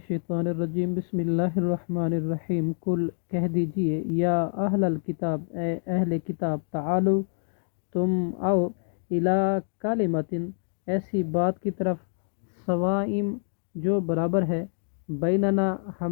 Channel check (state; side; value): silent; right; digital silence